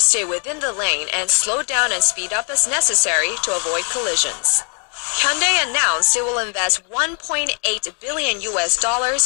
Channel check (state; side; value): quieter; right; 34.4 dB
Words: within the lane and slow down and speed up as necessary to avoid collisions. Hyundai announced it will invest $1.8 billion in